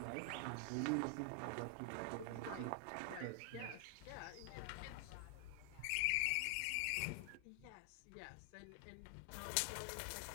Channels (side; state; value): both; different; correlation 0.00